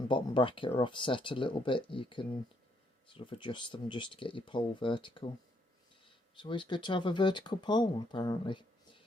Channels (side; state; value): both; normal; correlation 0.72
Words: bottom bracket are offset a little bit, you can sort of adjust them just to get your pole vertical. It's always good to have a vertical pole, apparently.